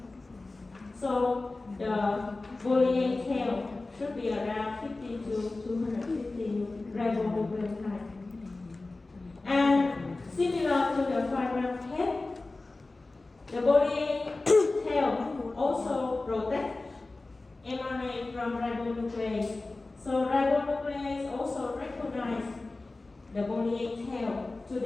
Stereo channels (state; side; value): quieter; right; 3.2 dB